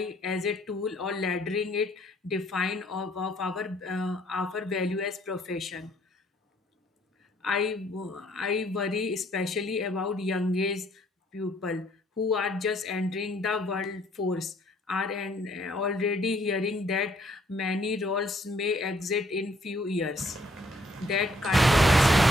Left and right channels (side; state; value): both; normal; correlation 0.65